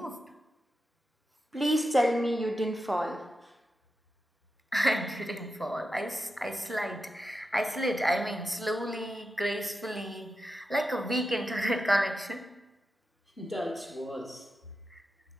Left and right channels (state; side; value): normal; both; correlation 0.90